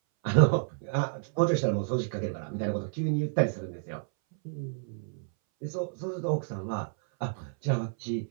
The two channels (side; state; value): left; silent; 58 dB below the other